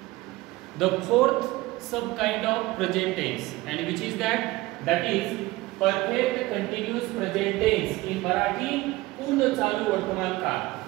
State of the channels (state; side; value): quieter; left; 19.6 dB